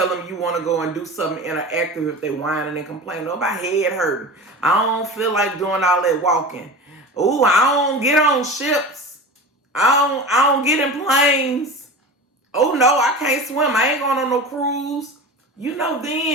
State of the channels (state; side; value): normal; both; correlation 0.32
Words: them you want to go and do something interactive, if they whining and complaining, oh, my head hurting. I don't feel like doing all that walking. Ooh, I don't get on ships. I don't get in planes. Oh, no, I can't swim. I ain't going on no cruise. You know